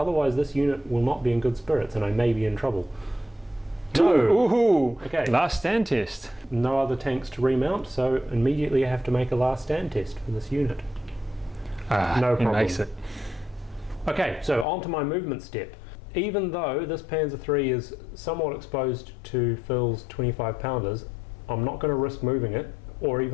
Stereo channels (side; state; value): right; drops out; at 14.7 s